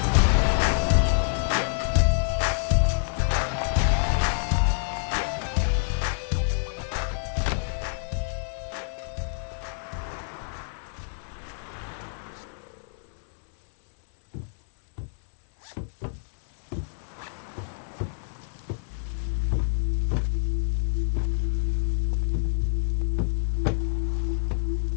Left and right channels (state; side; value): silent; right; digital silence